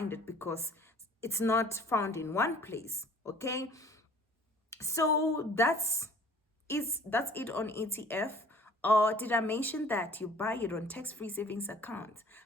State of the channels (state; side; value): normal; both; correlation 0.51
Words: it because it's not found in one place. Okay, so that's it on ETF. Or did I mention that you buy it on tax-free savings account?